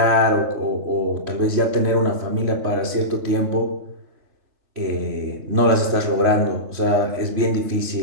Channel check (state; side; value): late; left; 3.1 ms